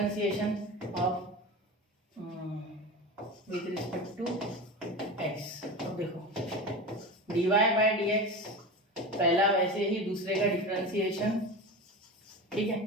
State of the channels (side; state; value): both; normal; correlation 0.27